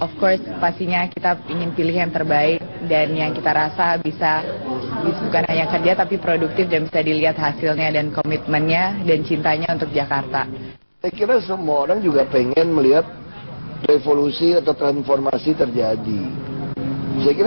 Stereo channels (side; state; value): both; inverted; correlation -1.00